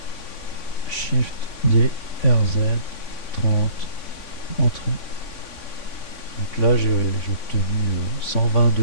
Shift D, RZ, 30, entrée. Donc là j'ai obtenu 120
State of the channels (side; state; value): right; late; 3.5 ms